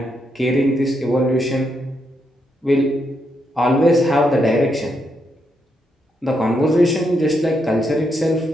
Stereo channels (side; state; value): both; normal; correlation 0.80